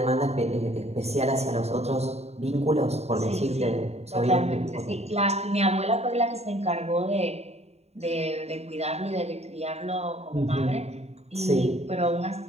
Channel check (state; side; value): late; left; 0.31 ms